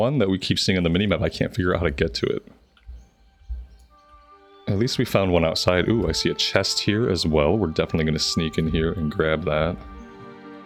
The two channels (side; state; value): both; identical; correlation 1.00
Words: that we keep seeing on the minimap, I can't figure out how to get to it. At least we found one outside. Ooh, I see a chest here as well. We're definitely going to sneak in here and grab that.